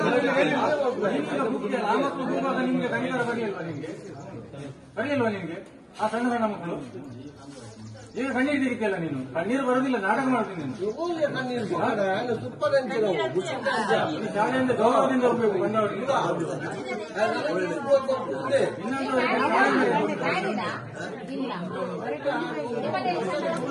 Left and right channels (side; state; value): both; identical; correlation 1.00